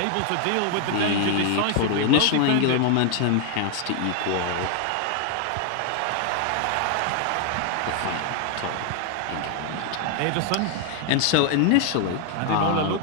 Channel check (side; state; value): both; different; correlation 0.00